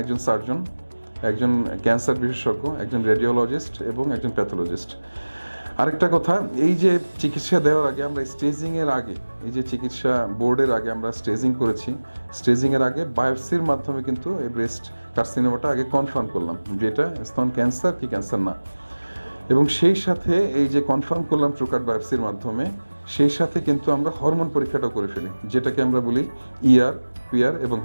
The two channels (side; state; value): both; inverted; correlation -1.00